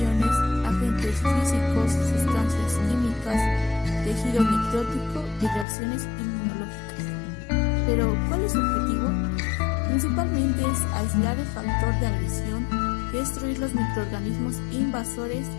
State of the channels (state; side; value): drops out; right; at 5.7 s